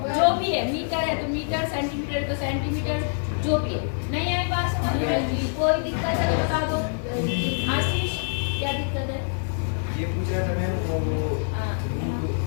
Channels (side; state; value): right; silent; digital silence